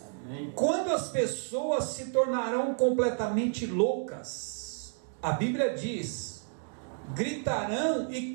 Amém. Quando as pessoas se tornarão completamente loucas, a Bíblia diz: gritarão e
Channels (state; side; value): silent; left; digital silence